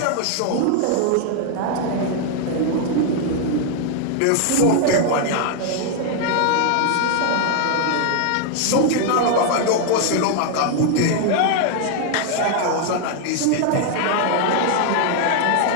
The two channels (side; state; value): both; different; correlation 0.00